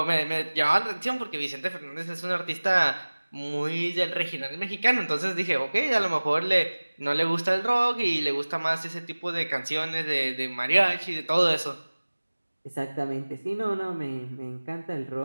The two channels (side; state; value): both; inverted; correlation -1.00